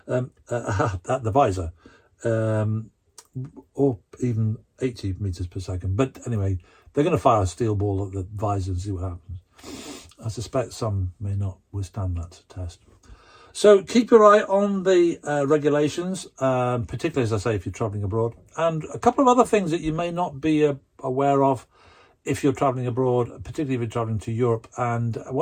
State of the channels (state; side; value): identical; both; correlation 1.00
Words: at the visor, or even 80 meters per second. But anyway, they're going to fire a steel ball at the visor and see what happens. I suspect some may not withstand that test. So keep your eye on the regulations, particularly, as I say, if you're travelling abroad. And a couple of other things that you may not be aware of if you're travelling abroad, particularly if you're travelling to Europe. And